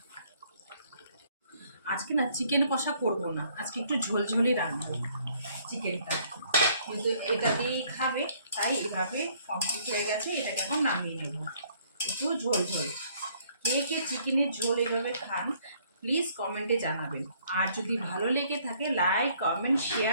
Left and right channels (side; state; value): both; inverted; correlation -0.63